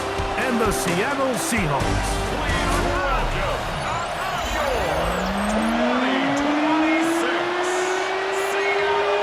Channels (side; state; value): both; identical; correlation 1.00